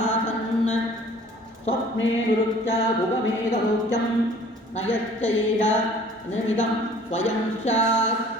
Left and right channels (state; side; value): normal; both; correlation 0.51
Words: ಸ್ವಪ್ನೇ ನಿರುಚ್ಯ ಭುಗಮೇಧಲೋಕ್ಯಂ ನಯಶ್ಚ ಏಷ ನಿಮಿದಂ ಸ್ವಯಂ ಸ್ಯಾತ್.